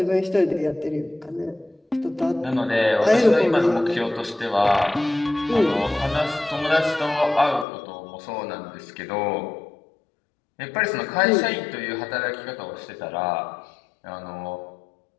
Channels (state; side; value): drops out; right; at 7.7 s